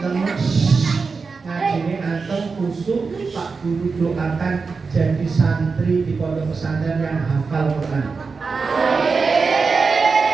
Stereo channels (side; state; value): left; quieter; 4.7 dB